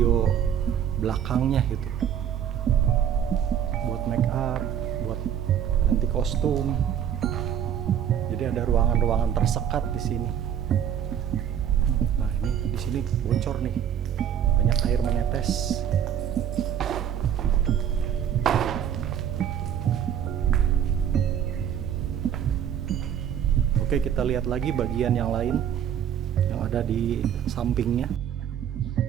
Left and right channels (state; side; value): quieter; left; 9.2 dB